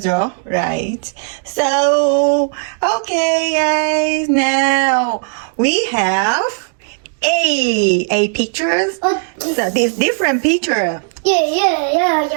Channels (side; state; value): left; silent; 61 dB below the other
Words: right? So, okay, guys. Now we have a pictures. So this different picture.